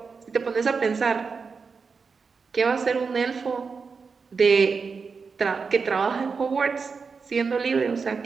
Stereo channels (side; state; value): left; quieter; 5.1 dB